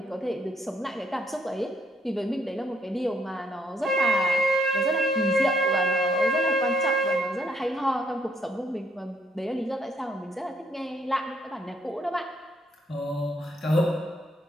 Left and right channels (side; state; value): both; normal; correlation 0.71